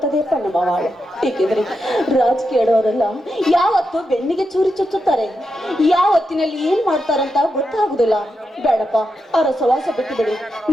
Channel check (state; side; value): normal; both; correlation 0.86